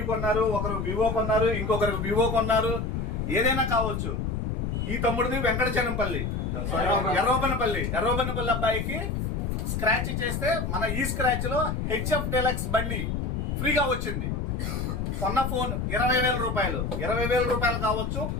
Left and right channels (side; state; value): left; noise; rumble, 1 dB below the sound